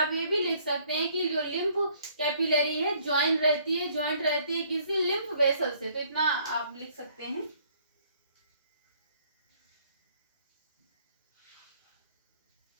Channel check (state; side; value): inverted; both; correlation -0.62